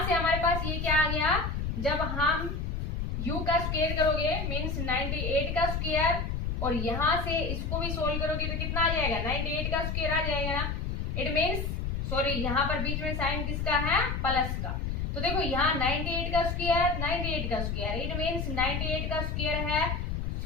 से हमारे पास ये क्या आ गया, जब हम u का स्क्वायर करोगे मीन्स 98 का स्क्वायर, और यहां से इसको भी सोल्व करोगे तो कितना आ जाएगा, 98 का स्क्वायर आ जाएगा ना। इट मीन्स सॉरी यहाँ पर बीच में साइन किसका है, प्लस का। तो देखो यहाँ 98 का स्क्वायर, 98 का स्क्वायर, इट मीन्स 98 का स्क्वायर है,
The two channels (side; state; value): left; noise; rumble, 2 dB below the sound